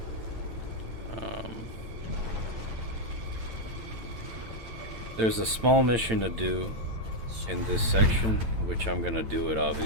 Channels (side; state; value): left; late; 8.9 ms